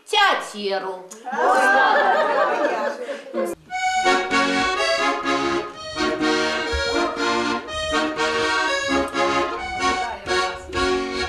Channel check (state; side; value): identical; both; correlation 1.00